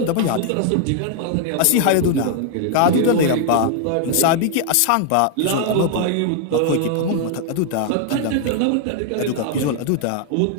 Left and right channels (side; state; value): both; different; correlation 0.00